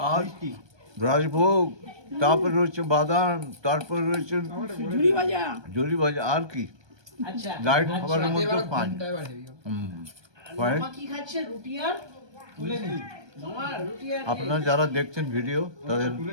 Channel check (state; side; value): late; left; 1.2 ms